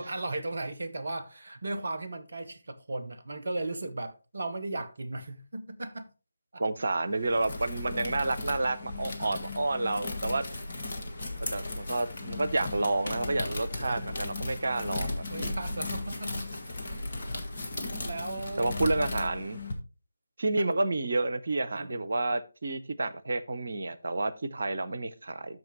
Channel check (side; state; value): both; inverted; correlation -0.93